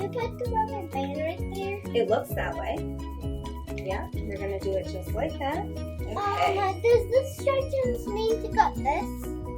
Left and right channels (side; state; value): both; identical; correlation 1.00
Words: you put the rubber band right there? It looks that way. Yeah, you're going to do it just like that. Okay. Does the instructions mean to cut this?